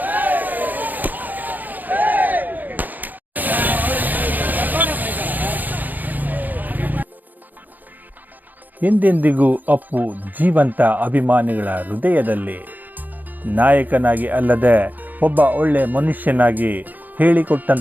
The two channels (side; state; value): left; late; 0.084 ms